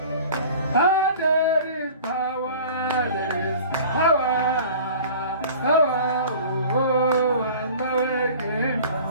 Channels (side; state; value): both; inverted; correlation -0.43